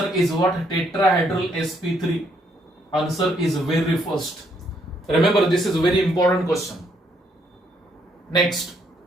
is what? Tetrahedral sp3. Answer is very first. Remember, this is a very important question. Next,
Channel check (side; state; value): both; normal; correlation 0.71